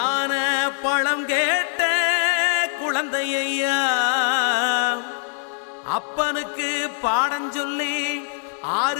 பழம் கேட்ட குழந்தையா, அப்பனுக்கு பாடம் சொல்லி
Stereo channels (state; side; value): silent; right; digital silence